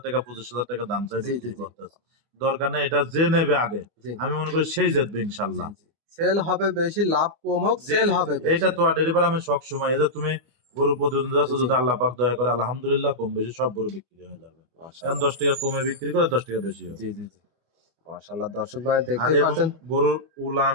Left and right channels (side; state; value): left; late; 24 ms